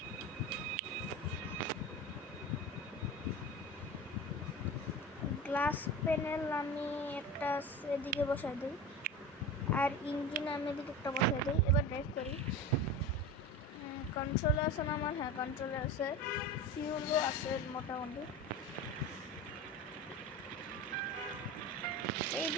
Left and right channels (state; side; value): normal; both; correlation 0.29